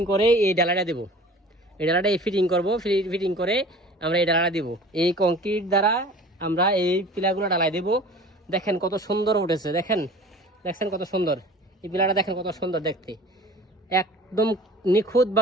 করে এই ডালাটা দেবো। এই ডালাটা ফিটিং করবো, ফিটিং করে আমরা এই ডালাটা দিব। এই কংক্রিট দ্বারা আমরা এই পিলাগুলো ডালাই দেবো। দেখেন কত সুন্দর উঠেছে, দেখছেন কত সুন্দর এই পিলাটা, দেখেন কত সুন্দর দেখতে, একদম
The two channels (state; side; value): normal; both; correlation 0.43